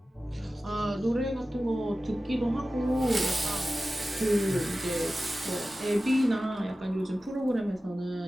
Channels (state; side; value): normal; both; correlation 0.95